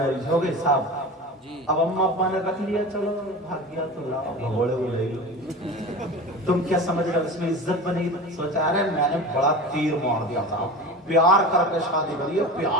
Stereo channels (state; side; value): normal; both; correlation 0.32